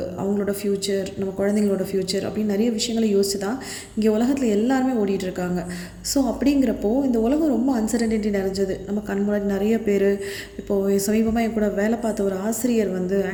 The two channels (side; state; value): both; identical; correlation 1.00